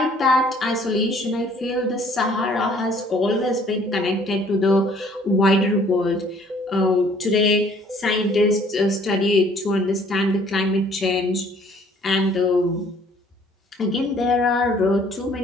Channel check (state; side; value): normal; both; correlation 0.58